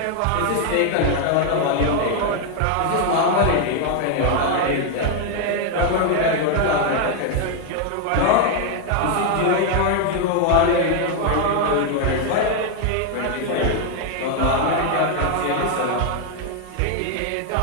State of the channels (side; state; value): both; different; correlation 0.00